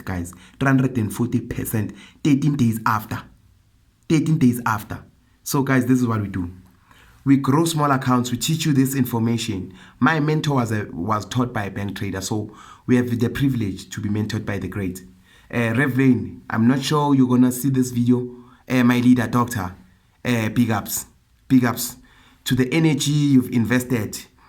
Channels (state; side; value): identical; both; correlation 1.00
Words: guys. 340%. 13 days after. 13 days after. So guys, this is what we do. We grow small accounts. We teach you this information. My mentor was taught by a bank trader, so we have the privilege to be mentored by the great Rev Lane. I'm not sure you're gonna see this video. My leader, doctor. Big ups to the energy you've invested,